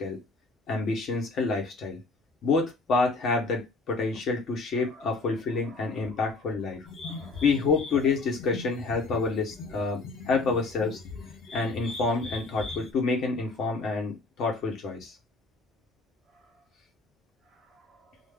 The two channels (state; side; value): quieter; right; 3.6 dB